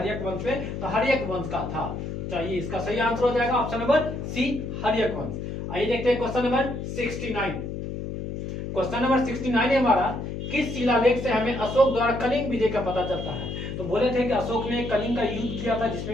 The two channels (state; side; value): noise; left; hum, 6 dB below the sound